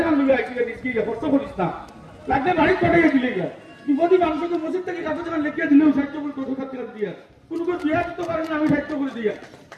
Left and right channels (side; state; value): both; identical; correlation 1.00